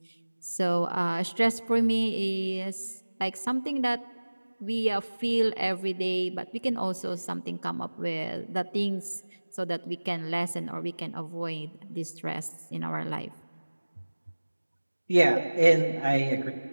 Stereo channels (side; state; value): both; inverted; correlation -1.00